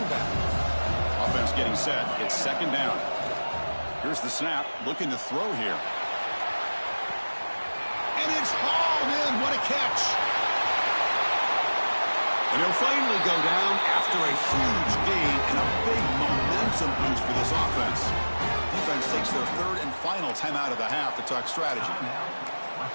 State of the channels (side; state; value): both; inverted; correlation -1.00